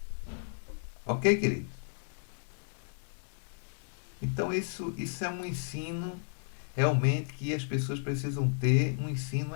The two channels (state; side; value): silent; right; digital silence